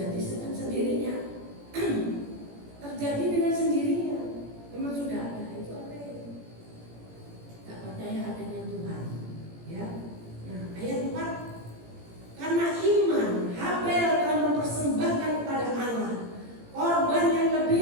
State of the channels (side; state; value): left; late; 17 ms